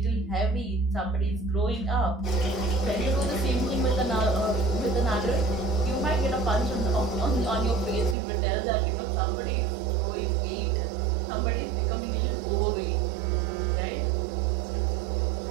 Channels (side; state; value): left; drops out; at 8.2 s